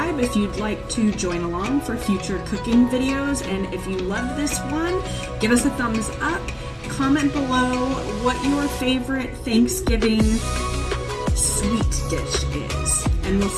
if you'd like to join along for future cooking videos. And if you love this one, give us a thumbs up. Comment below what your favorite Thanksgiving sweet dish is. And we'll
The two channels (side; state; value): both; identical; correlation 1.00